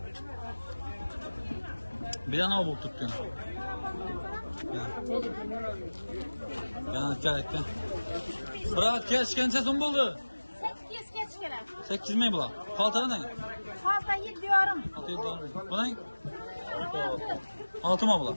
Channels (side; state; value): both; inverted; correlation -1.00